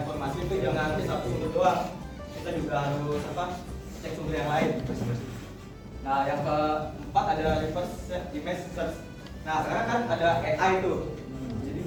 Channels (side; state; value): both; identical; correlation 1.00